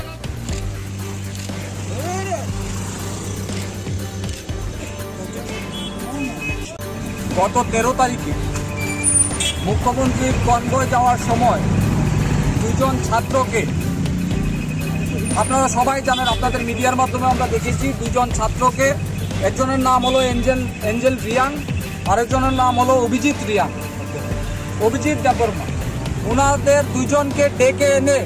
গত 13 তারিখে মুখ্যমন্ত্রীর কনভয় যাওয়ার সময় দুজন ছাত্রকে, আপনারা সবাই জানেন, আপনাদের মিডিয়ার মাধ্যমে আমরা দেখেছি, দুজন ছাত্রকে, একজনের নাম হলো এঞ্জেল রিয়াং, আরেকজনের নাম হলো অভিজিৎ দেববর্মা। ওনাদের দুজনকে ডেকে এনে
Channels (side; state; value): both; identical; correlation 1.00